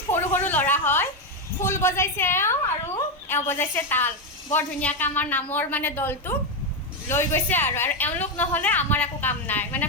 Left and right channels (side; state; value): both; normal; correlation 0.07